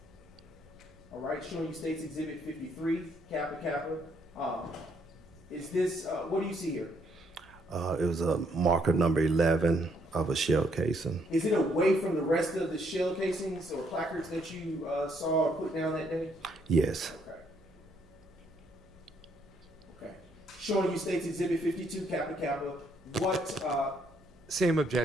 All right, showing you State's Exhibit 53, Kappa Kappa. Is this, what do you see here? It was a marker number 11 of a shell casing. Is it away from the rest of the shell casings or placards that you saw or put down that day? Yes. Okay. Okay. Showing you State's Exhibit 52, Kappa Kappa. What, Same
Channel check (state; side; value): noise; right; hum, 28 dB below the sound